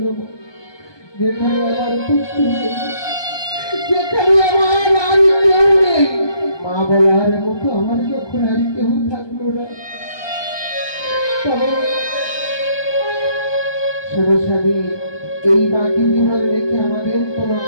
যেখানে আমার পুত্র নেই, যেখানে আমার আর কেউ নেই, মা বলার মতো আমার যখন আর কেউ থাকলো না, তবে সরস্বামী এই বাকি জীবন রেখে আমাদের কোনো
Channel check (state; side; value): late; right; 1.2 ms